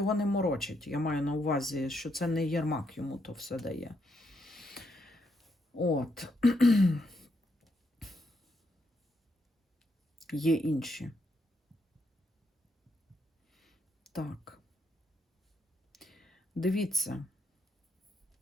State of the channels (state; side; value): normal; both; correlation 0.78